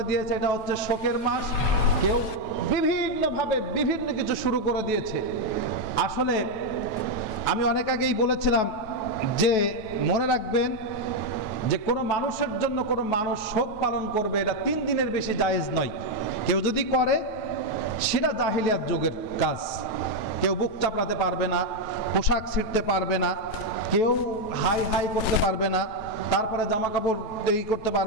দিয়েছে এটা হচ্ছে শোকের মাস, কেউ বিভিন্নভাবে বিভিন্ন কিছু শুরু করে দিয়েছে। আসলে আমি অনেক আগেই বলেছিলাম যে মনে রাখবেন যে কোনো মানুষের জন্য কোনো মানুষ শোক পালন করবে এটা 3 দিনের বেশি জায়েজ নয়। কেউ যদি করে সেটা জাহিলিয়াত যুগের কাজ। কেউ বুক চাপড়াতে পারবে না, পোশাক ছিঁড়তে পারবে না, কেউ হাই হাই করতে পারবে না, তারপরে জামা কাপড় এই করতে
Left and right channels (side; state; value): right; late; 9.3 ms